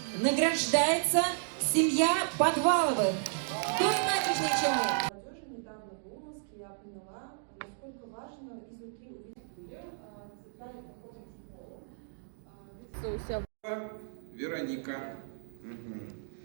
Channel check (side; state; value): left; silent; digital silence